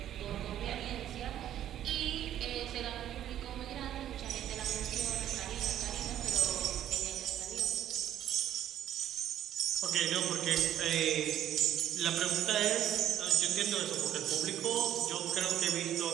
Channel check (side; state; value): left; quieter; 11.4 dB